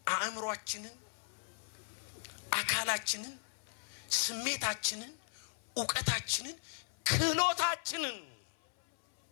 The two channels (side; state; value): right; silent; 53 dB below the other